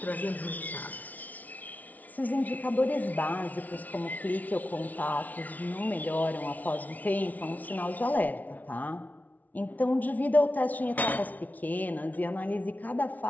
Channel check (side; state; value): right; late; 0.076 ms